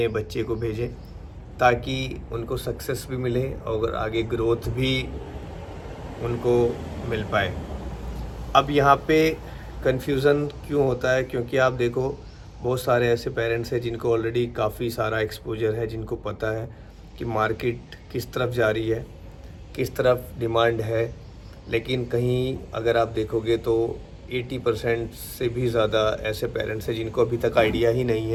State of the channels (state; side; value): identical; both; correlation 1.00